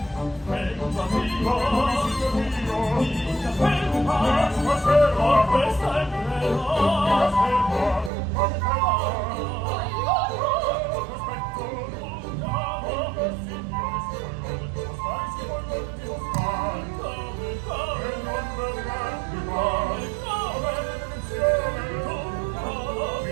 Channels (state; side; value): drops out; left; at 8.1 s